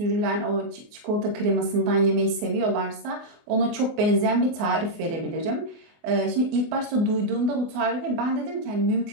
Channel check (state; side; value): late; left; 24 ms